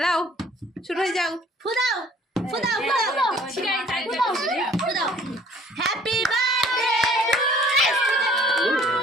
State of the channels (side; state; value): both; normal; correlation 0.55